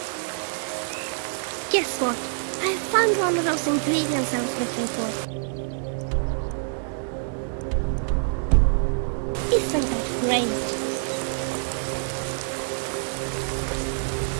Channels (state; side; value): silent; left; 61 dB below the other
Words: Guess what? I found one of those ingredients I was looking for. Isn't that great?